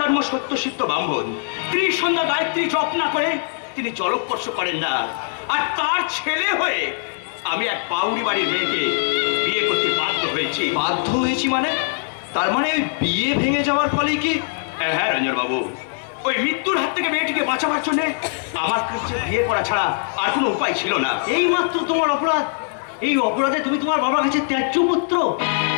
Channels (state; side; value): silent; right; 65 dB below the other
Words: সত্যসিদ্ধ ব্রাহ্মণ। ত্রিসন্ধ্যা গায়ত্রী জপ না করে তিনি জলস্পর্শ করেন না। আর তার ছেলে হয়ে আমি এক বাউরি বাড়ির মেয়েকে বিয়ে করতে বাধ্য হয়েছি। বাধ্য হয়েছি মানে? তার মানে ওই বিয়ে ভেঙে যাওয়ার ফলে কি? হ্যাঁ রঞ্জন বাবু, ওই মৃত্যুর হাত থেকে মেয়েটিকে বাঁচাবার জন্য আমার কাছে বিয়ে করা ছাড়া আর কোনো উপায় ছিল না। এই মাত্র তোমার অপরাধ। এই অপরাধে তুমি তোমার বাবার কাছে ত্যায্য পুত্র।